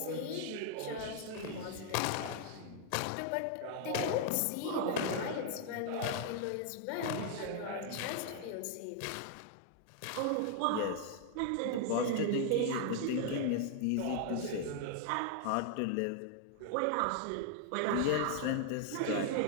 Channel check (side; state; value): both; different; correlation 0.00